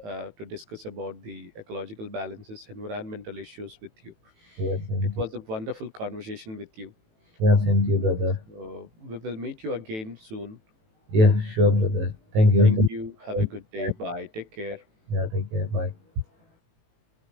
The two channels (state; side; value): late; left; 18 ms